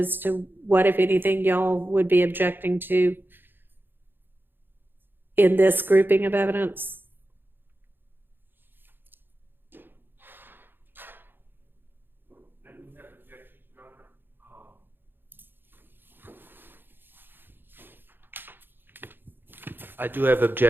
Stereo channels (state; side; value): late; left; 0.098 ms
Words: to what, if anything, y'all would be objecting to in this grouping of evidence. I do have